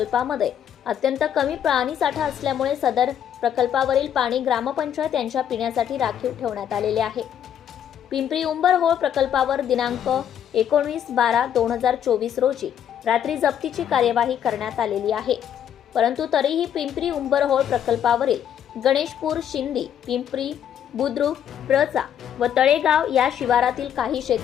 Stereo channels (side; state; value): right; quieter; 9.4 dB